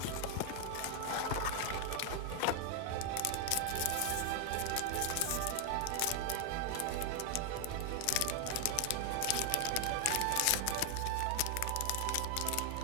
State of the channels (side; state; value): both; different; correlation 0.00